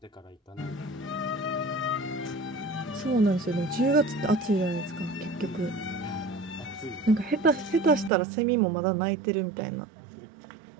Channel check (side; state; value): left; drops out; at 8.1 s